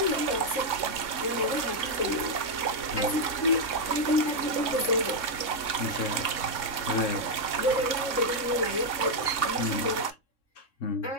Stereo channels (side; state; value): right; late; 3.6 ms